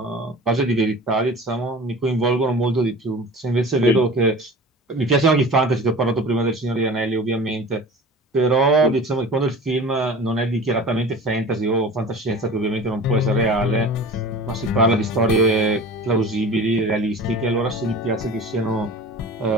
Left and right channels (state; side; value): normal; both; correlation 0.38